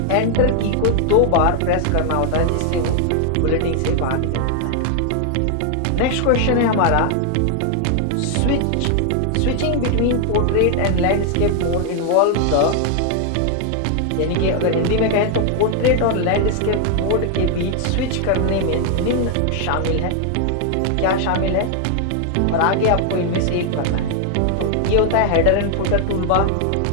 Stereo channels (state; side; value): different; both; correlation 0.00